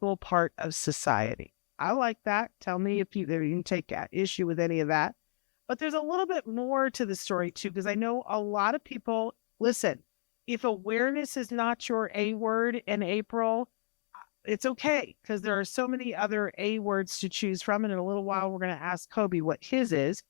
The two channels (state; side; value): silent; right; digital silence